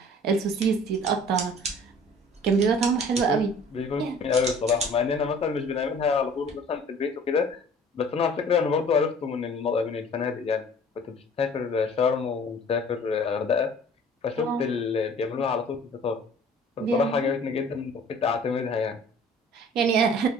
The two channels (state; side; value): normal; both; correlation 0.49